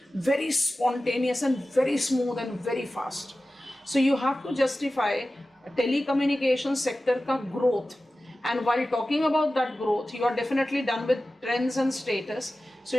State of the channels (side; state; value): both; normal; correlation 0.95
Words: very spontaneous and very smooth and very fast. So you have to justify telecommunication sector ka growth, and while talking about that growth, you are definitely done with trends and status. So